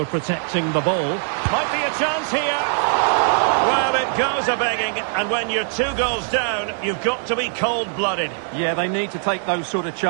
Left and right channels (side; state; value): left; silent; 65 dB below the other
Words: protecting the ball. Might be a chance here. Well, it goes a-begging, and when you're 2 goals down, you've got to be cold-blooded. Yeah, they need to take those sort of